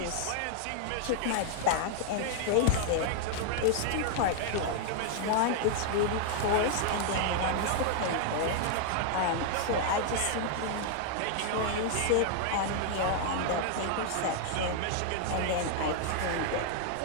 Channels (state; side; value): different; both; correlation 0.00